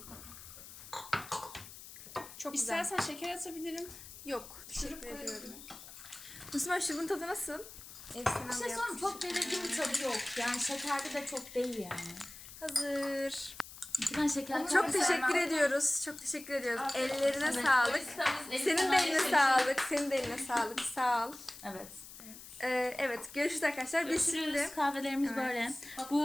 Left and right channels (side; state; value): left; noise; hiss, 15 dB below the sound